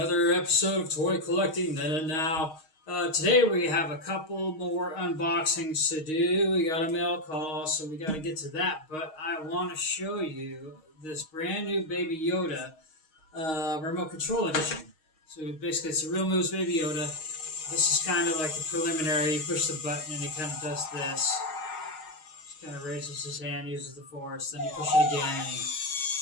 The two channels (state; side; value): late; right; 6.4 ms